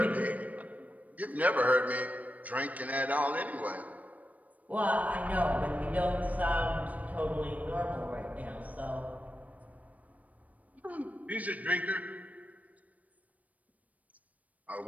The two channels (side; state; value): left; late; 0.072 ms